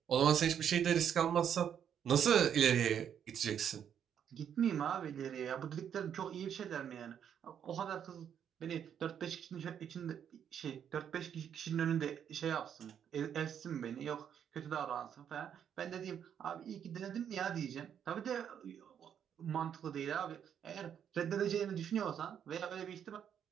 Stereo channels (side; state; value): left; quieter; 8.7 dB